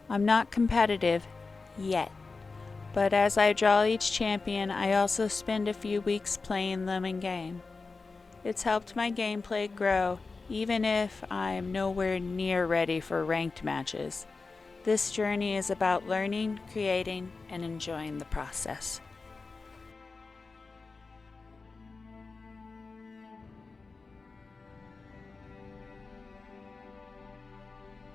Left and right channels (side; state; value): right; quieter; 4.1 dB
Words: I'm not competitive yet, but as I draw each champion, I also spend a few weeks playing them in game. It's helped my gameplay grow, even if I'm nowhere near ready for ranked matches. This journey is about learning, creating, and enjoying the process.